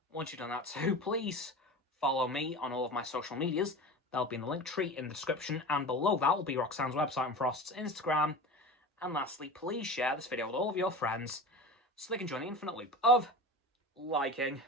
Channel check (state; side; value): normal; both; correlation 0.32